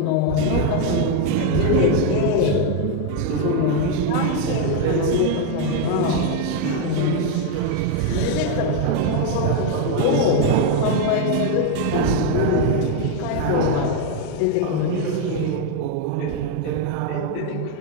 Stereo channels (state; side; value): different; both; correlation 0.01